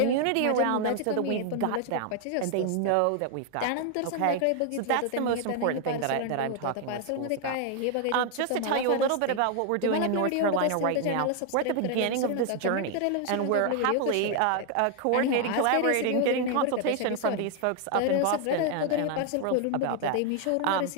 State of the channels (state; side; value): different; both; correlation 0.00